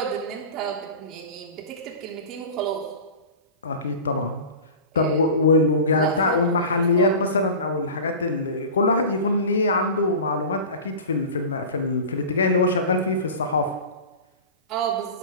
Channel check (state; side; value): inverted; both; correlation -0.33